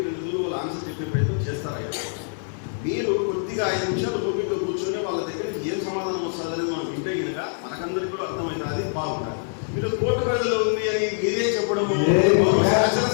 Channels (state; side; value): silent; right; 62 dB below the other